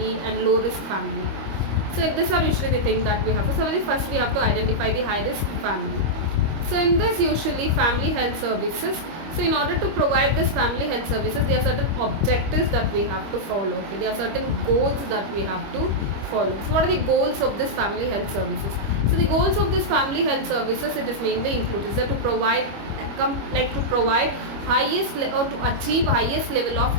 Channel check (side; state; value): left; late; 25 ms